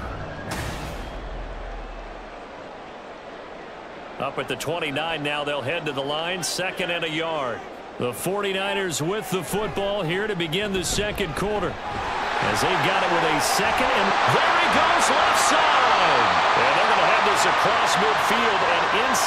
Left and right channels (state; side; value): identical; both; correlation 1.00